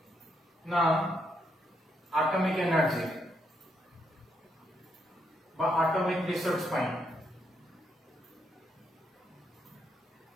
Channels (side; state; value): both; normal; correlation 0.77